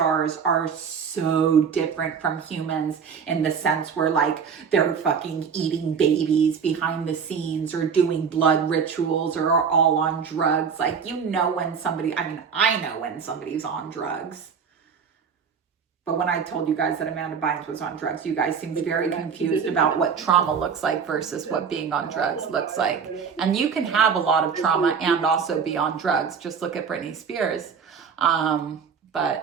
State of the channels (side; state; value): left; quieter; 6.5 dB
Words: are so different from humans in the sense where like they're fucking eating babies behind the scenes or doing blood rituals or are all on drugs. Like, I know when somebody's on drugs. But when I told you guys that Amanda Bynes was on drugs, you guys seemed very confused about what trauma looks like versus what being on drugs looks like. And you can have a lot of trauma and also be on drugs. Just look at Britney Spears.